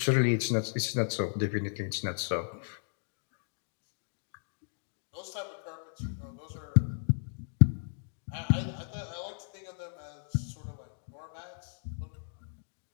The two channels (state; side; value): silent; right; digital silence